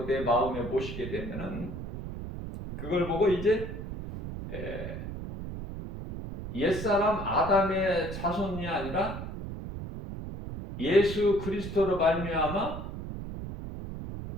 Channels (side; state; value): right; noise; rumble, 8 dB below the sound